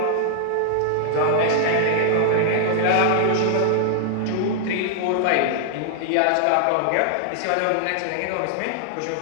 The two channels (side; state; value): both; different; correlation 0.00